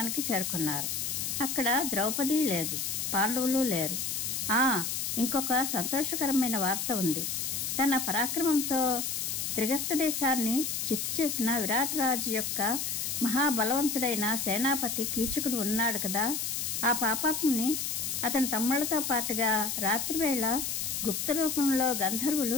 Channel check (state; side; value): noise; left; hiss, 2 dB below the sound